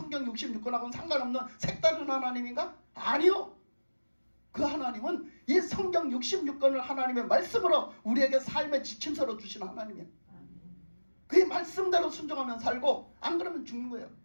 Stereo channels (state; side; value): inverted; both; correlation -1.00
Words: 66권하고는 상관없는 색다른 하나님인가? 아니요. 그 하나님은 이 성경 66권을 하나님의 말씀으로 우리에게 삶의 지침서로 주신 하나님이에요. 그 말씀대로 순종하면 살고 안 그러면 죽는 거예요.